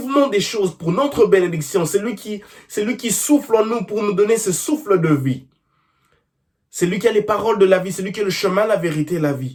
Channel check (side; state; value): both; identical; correlation 1.00